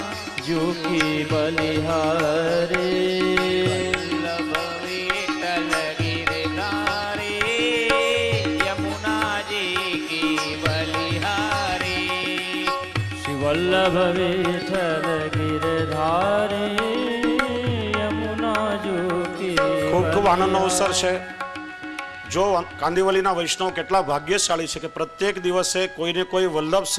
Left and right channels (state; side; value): identical; both; correlation 1.00